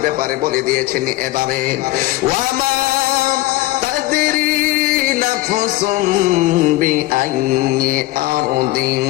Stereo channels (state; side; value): quieter; right; 17.9 dB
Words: ব্যাপারে বলে দিয়েছেন এভাবে, ওয়ামা তাদরি নাফসুম বিআইয়ি আরদিন